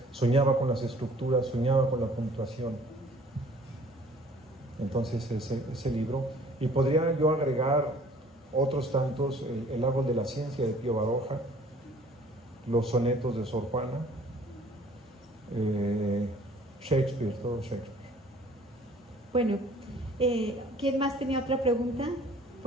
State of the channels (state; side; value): normal; both; correlation 0.54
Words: soñaba con las estructuras, soñaba con la puntuación. Entonces ese libro, y podría yo agregar otros tantos, el árbol de la ciencia de Pío Baroja, los sonetos de Sor Juana, Shakespeare, todo Shakespeare. Bueno, ¿quién más tenía otra pregunta?